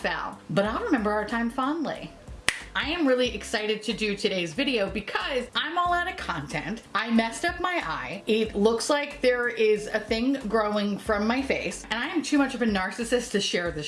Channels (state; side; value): identical; both; correlation 1.00